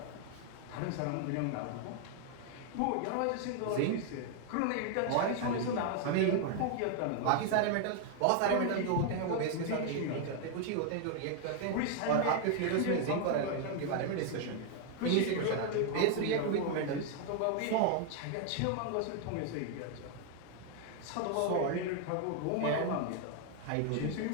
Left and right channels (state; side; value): different; both; correlation 0.00